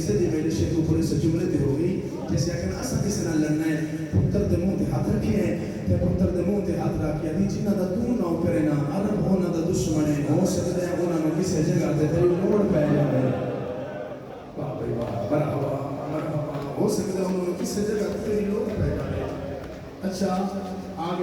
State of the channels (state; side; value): identical; both; correlation 1.00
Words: دی میرے شیخ اوپر سے جملے تے ہو گئی جیسے کہ اساں کس نہ لڑنا ہے پتر دے منہ تے ہاتھ رکھے ہیں تے پتر دے منہ تے ہاتھ رکھ کے دی جنہ دا تو نہ کرے نا عرب ہونا دا دشمن ہے ہو سکدا ہے انہاں نو کسے جگہ تے تیری لوڑ پے جاوے واہ بھائی واہ مرحبا مرحبا ہو سکتا ہے انہوں نے کسی جگہ تیری لوگ پہ جائے اچھا